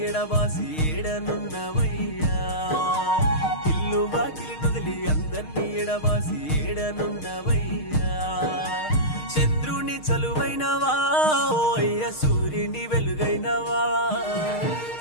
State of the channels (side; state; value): right; late; 6.5 ms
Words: ఎడబాసి ఏడనున్నవయ్యా ఇల్లు వాకిలి నొదిలి అందర్నీ ఎడబాసి ఏడనున్నవయ్యా చంద్రుని చలువైనవా ఓ అయ్య సూర్యుని వెలుగైనవా